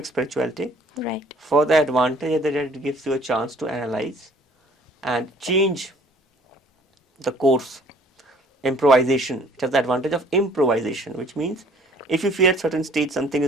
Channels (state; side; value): normal; both; correlation 0.55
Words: spirituality. Right. For the advantage that it gives you a chance to analyze and change the course. Improvisation. It has the advantage of improvisation, which means if you feel at certain stage something